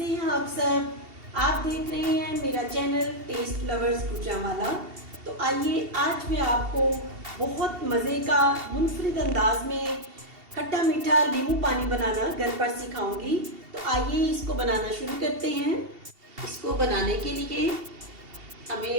हैं आप सब? आप देख रहे हैं मेरा चैनल टेस्ट लवर्स गुजरांवाला। तो आइए आज मैं आपको बहुत मज़े का मुनफरिद अंदाज में खट्टा मीठा नींबू पानी बनाना घर पर सिखाऊंगी। तो आइए इसको बनाना शुरू करते हैं। इसको बनाने के लिए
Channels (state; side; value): late; left; 2.7 ms